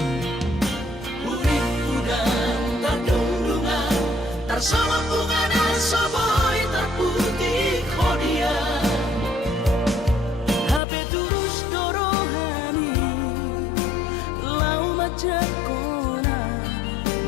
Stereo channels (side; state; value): right; drops out; at 10.8 s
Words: sama bunga dan soboy terputih kodia HP tulus dorohani lau macam kona